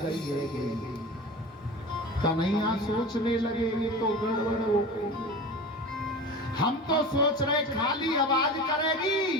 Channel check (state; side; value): normal; both; correlation 0.33